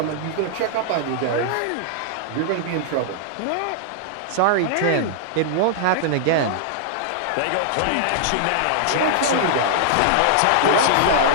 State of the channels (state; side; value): different; both; correlation -0.01